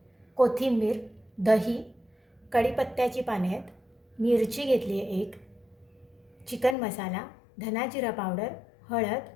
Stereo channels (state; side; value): drops out; right; at 6.8 s